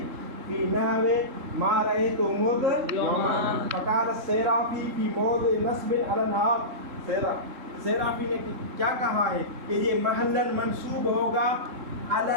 فی نحو ما رأیت مذ یومان فقال السیرافی فی موضع نصب علی الحال. سیرافی نے کیا کہا ہے کہ یہ محلاً منصوب ہوگا علی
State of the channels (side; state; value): left; late; 3.7 ms